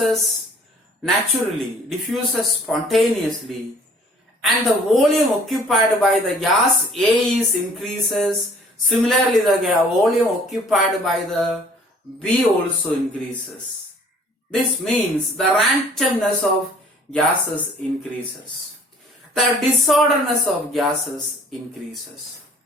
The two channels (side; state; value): both; normal; correlation 0.54